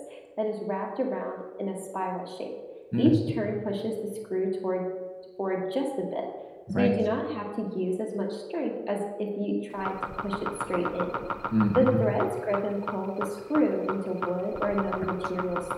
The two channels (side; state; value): both; identical; correlation 1.00